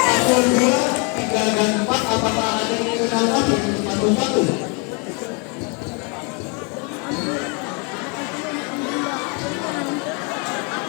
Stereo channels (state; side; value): quieter; right; 33.8 dB